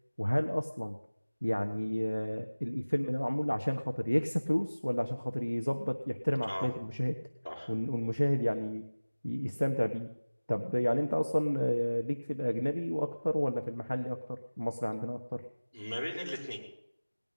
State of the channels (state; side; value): inverted; both; correlation -1.00